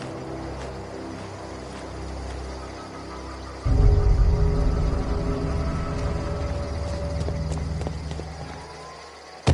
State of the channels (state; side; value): identical; both; correlation 1.00